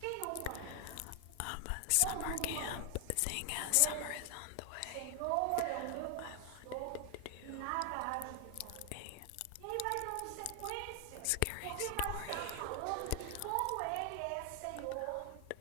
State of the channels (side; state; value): both; different; correlation 0.00